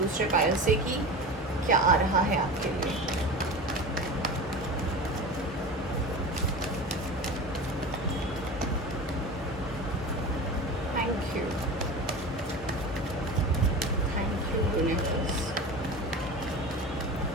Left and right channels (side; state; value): both; normal; correlation 0.31